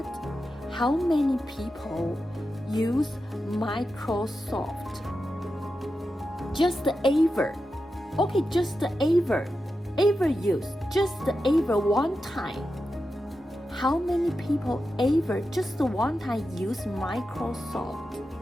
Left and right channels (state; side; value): normal; both; correlation 0.90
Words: How many people use Microsoft? Just ever. Okay, just ever use, just ever one time. How many people ever just one time use Microsoft?